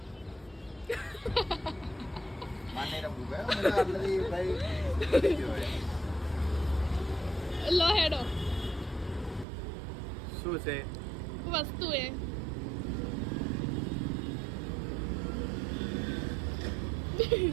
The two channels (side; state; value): left; drops out; at 9.5 s